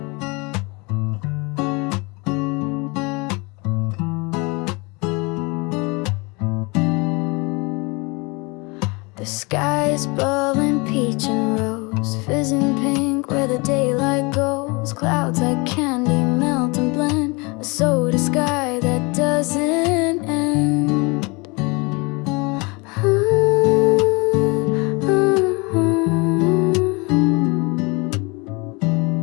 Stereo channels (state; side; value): quieter; right; 28.1 dB